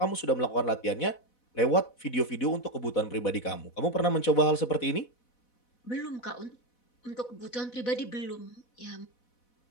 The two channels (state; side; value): late; right; 4.1 ms